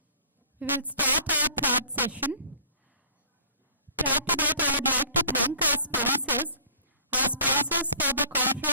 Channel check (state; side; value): inverted; both; correlation -0.51